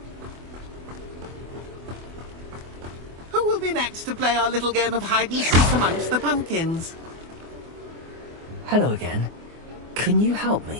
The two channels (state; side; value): late; left; 24 ms